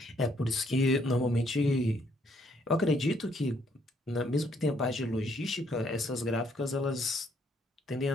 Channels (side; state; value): both; normal; correlation 0.68